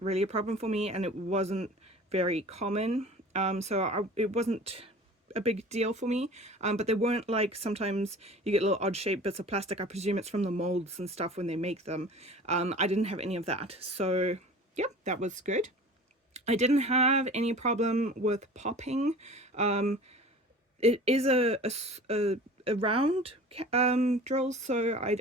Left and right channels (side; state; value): both; normal; correlation 0.41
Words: really a problem for me, and it wasn't very common. It wasn't a big deal for me. But they weren't like, sometimes you get little odd shaped bits of plastic. I presume it's from the molds and stuff when they make them. I didn't have any of that. So yeah, that was good. I didn't have any problem with popping. It is a round drill, so I